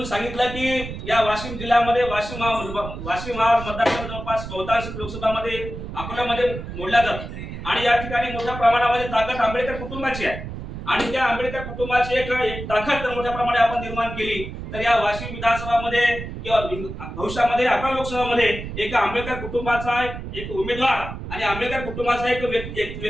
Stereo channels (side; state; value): right; noise; rumble, 9 dB below the sound